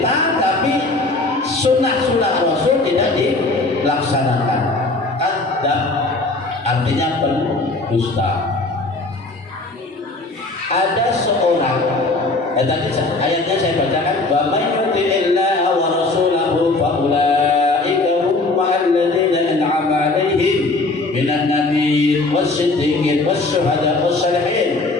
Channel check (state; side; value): quieter; right; 3.2 dB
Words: tapi sunnah Rasul tidak dilaksanakan. Kadzab artinya pendusta. Ada seorang, tadi ayatnya saya bacakan, wa may yuti'illaha wa rasulahu fa ulaika hum ma'alladzina an'ama 'alaihim minan nabiyyin was-siddiqin was-syuhada'i was-shalihin